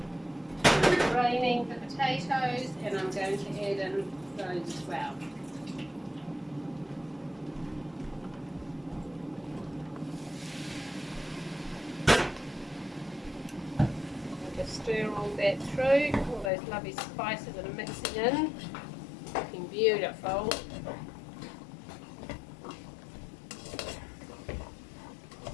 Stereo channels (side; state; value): right; drops out; at 16.5 s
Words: I'm draining the potatoes, and I'm going to add in those as well. Stir all that through, all those lovely spices that are mixing in, looking beautiful.